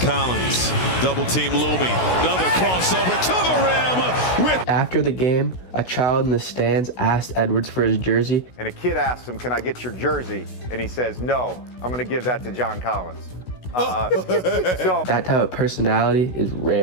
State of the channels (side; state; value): right; late; 16 ms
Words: double team looming, another crossover to the rim. After the game, a child in the stands asked Edwards for his jersey. And a kid asked him, "Can I get your jersey?" And he says, "No, I'm going to give that to John Collins." That type of personality is